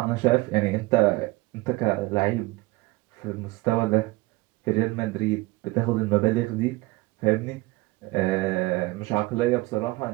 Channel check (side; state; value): left; quieter; 21.9 dB